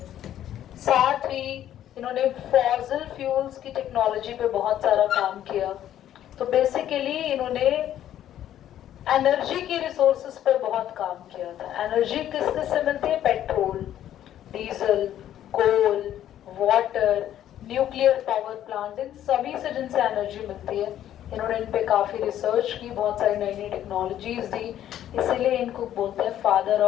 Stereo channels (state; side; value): quieter; right; 11.5 dB